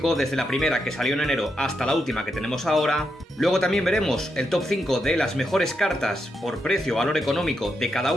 desde la primera que salió en enero hasta la última que tenemos ahora. Luego también veremos el top 5 de las mejores cartas por precio o valor económico de cada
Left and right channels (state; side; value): normal; both; correlation 0.83